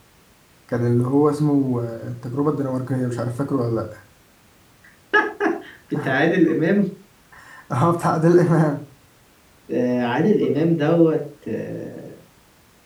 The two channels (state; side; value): identical; both; correlation 1.00